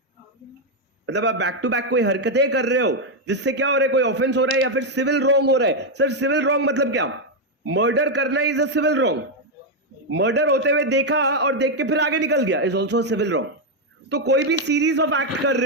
मतलब आप back to back कोई हरकतें कर रहे हो जिससे क्या हो रहा है? कोई ऑफेंस हो रहा है या फिर सिविल रॉन्ग हो रहा है. सर सिविल रॉन्ग मतलब क्या? मर्डर करना is a civil wrong. Murder होते हुए देखा और देख के फिर आगे निकल गया इज ऑल्सो सिविल रॉन्ग. तो कोई भी सीरीज ऑफ एक्ट कर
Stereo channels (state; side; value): normal; both; correlation 0.02